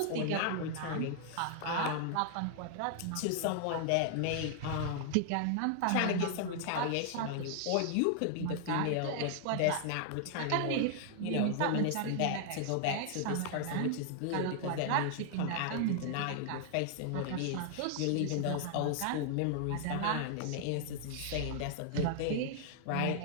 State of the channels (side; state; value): both; different; correlation 0.00